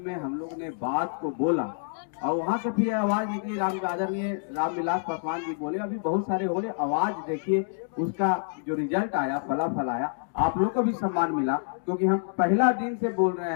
हम लोग ने बात को बोला और वहां से फिर आवाज निकली। आदरणीय रामविलास पासवान जी बोले, अभी बहुत सारे हो रहे, आवाज देखिए, उसका जो रिजल्ट आया, फलाफल आया, आप लोग को भी सम्मान मिला। क्योंकि हम पहला दिन से बोल रहे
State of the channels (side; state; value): right; silent; digital silence